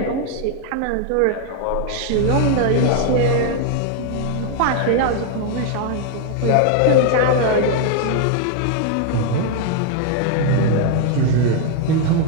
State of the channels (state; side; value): different; both; correlation 0.00